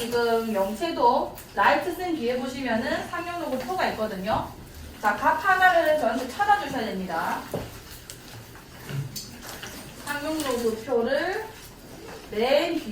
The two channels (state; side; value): identical; both; correlation 1.00